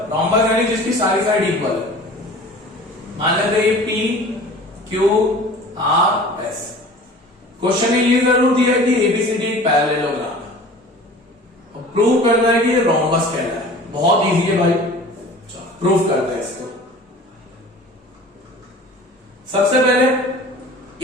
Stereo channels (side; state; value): both; normal; correlation 0.43